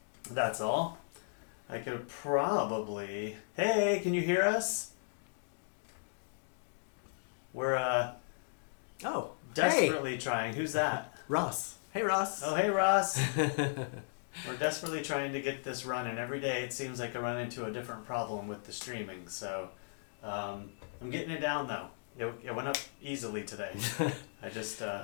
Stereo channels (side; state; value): right; silent; digital silence